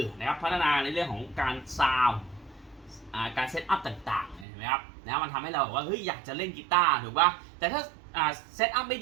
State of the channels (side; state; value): left; drops out; at 4.5 s